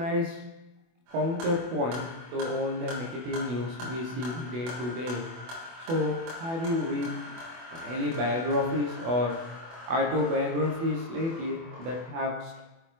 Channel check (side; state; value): left; late; 24 ms